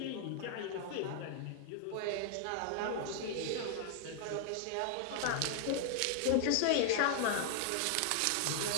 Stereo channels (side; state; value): both; different; correlation 0.00